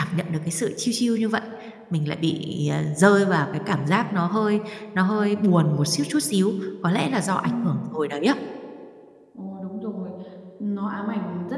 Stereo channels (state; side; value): identical; both; correlation 1.00